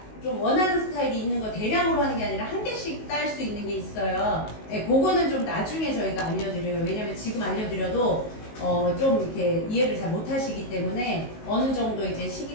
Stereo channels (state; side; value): late; right; 19 ms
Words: 좀 원하는 스타일이 있는 거 대량으로 하는 게 아니라 한 개씩 딸 수 있는 게 있어요. 네, 그거는 좀 나중에 저희가 알려드려요. 왜냐면 지금 알려드려도 좀 이렇게 이해를 잘 못하시기 때문에 어느 정도 이제